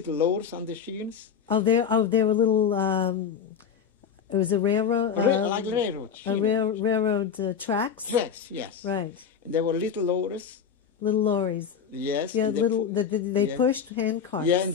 lowers on the sheens. Oh, there were little. It was a railroad. Like railroad. Railroad tracks. Tracks, yes. Right. And there were little lowers. Little lorries. Yes. Yeah, they pushed hand carts. Yeah, and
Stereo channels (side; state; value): right; quieter; 7.2 dB